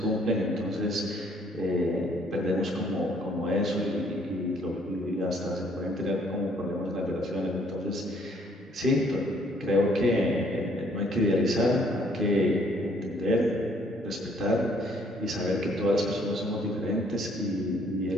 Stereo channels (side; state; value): both; normal; correlation 0.64